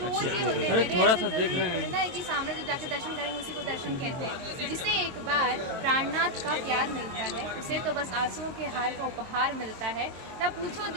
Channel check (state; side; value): late; left; 23 ms